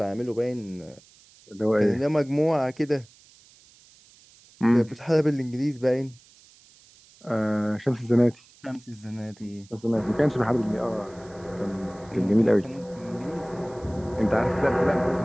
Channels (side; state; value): right; noise; hiss, 27 dB below the sound